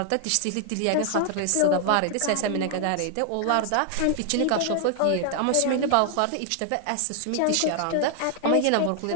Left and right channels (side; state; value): both; different; correlation 0.00